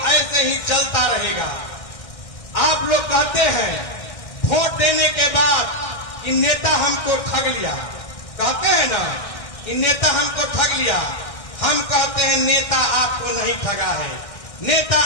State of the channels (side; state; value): right; late; 1.6 ms